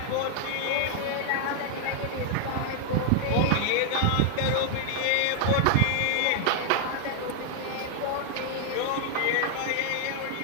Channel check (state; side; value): different; both; correlation 0.00